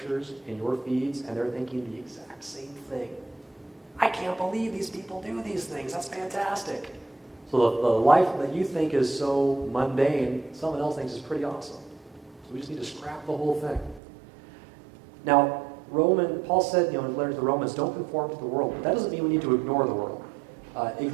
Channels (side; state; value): left; drops out; at 14.0 s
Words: and your feeds, and they're thinking the exact same thing. I can't believe these people do these things. That's fantastic. So the life that you think is so mundane, someone else thinks is pretty awesome. So we just need to scrap the whole thing. Now, Paul said, in his letter to the Romans, don't conform to the world. But that doesn't mean we need to ignore the world.